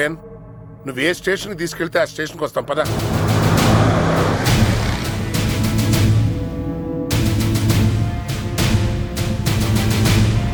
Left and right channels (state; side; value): identical; both; correlation 1.00